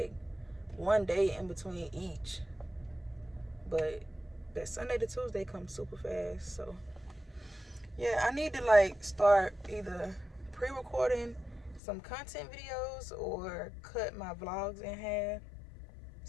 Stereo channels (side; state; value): right; drops out; at 11.8 s